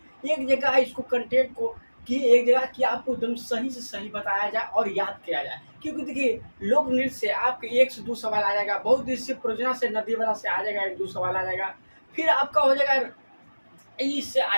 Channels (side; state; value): both; inverted; correlation -1.00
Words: एक जगह इसको कंटेंट को कि एक जगह कि आपको एकदम सही से सही बताया जाए और याद किया जाए। क्योंकि देखिए लोक नृत्य से आपके 1 से 2 सवाल आ जाएगा, बहुउद्देशीय परियोजना से नदी वाला से आ जाएगा 1-2 सवाल आ जाएगा, फिर आपका हो जाएगा इससे आ